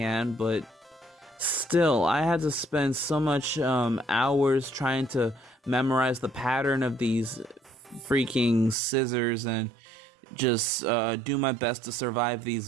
but still, I had to spend so much hours trying to memorize the pattern of these freaking scissors and just do my best to survive these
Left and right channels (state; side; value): drops out; left; at 8.8 s